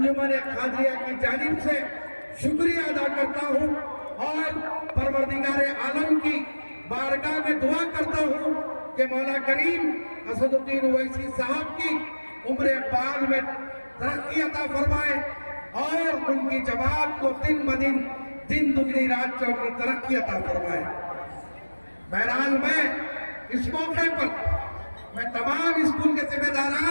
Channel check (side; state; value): both; inverted; correlation -1.00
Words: خادریہ کی جانب سے شکریہ ادا کرتا ہوں، اور پروردگار عالم کی بارگاہ میں دعا کرتا ہوں کہ مولا کریم اسد الدین اویسی صاحب کی عمر اقبال میں ترقی عطا فرمائے، اور ان کی جماعت کو دن بدن دن دگنی رات چوگنی ترقی عطا فرمائے۔ بہرحال میں اس موقع پر میں تمام اسکول کے ذمہ